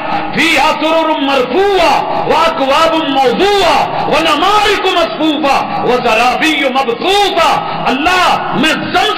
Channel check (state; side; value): identical; both; correlation 1.00